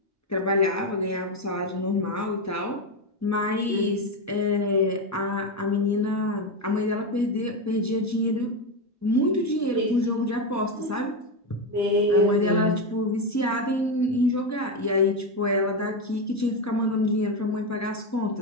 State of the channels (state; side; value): normal; both; correlation 0.11